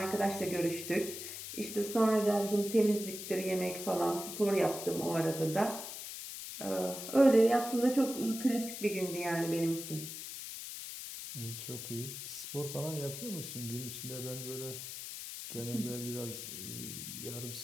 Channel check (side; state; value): left; noise; hiss, 8 dB below the sound